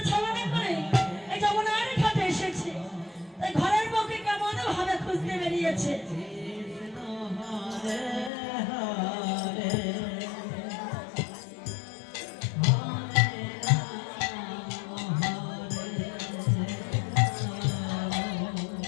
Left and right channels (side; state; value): right; drops out; at 8.3 s